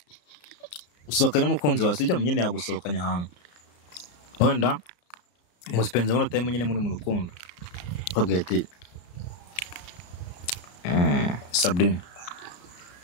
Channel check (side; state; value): right; late; 34 ms